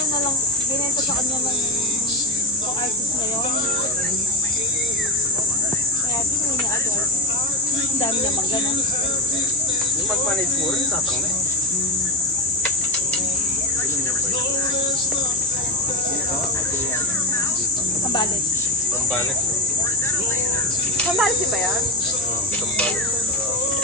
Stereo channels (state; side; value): normal; both; correlation 0.14